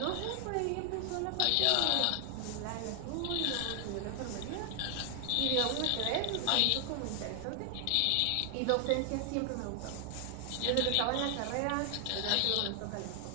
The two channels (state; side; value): different; both; correlation 0.00